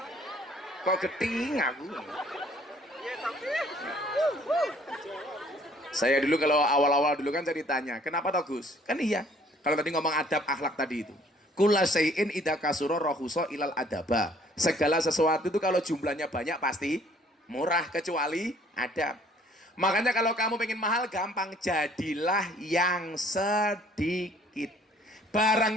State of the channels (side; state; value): both; normal; correlation 0.58